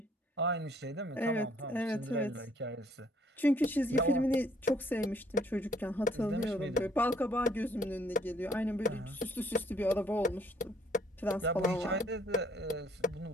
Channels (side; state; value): both; normal; correlation 0.63